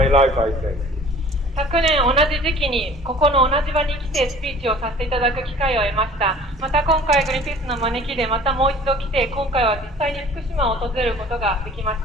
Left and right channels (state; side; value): normal; both; correlation 0.48